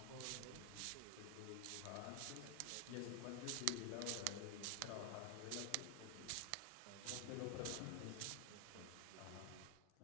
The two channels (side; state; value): both; different; correlation 0.00